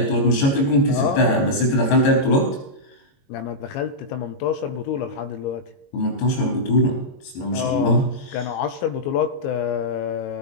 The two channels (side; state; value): right; late; 22 ms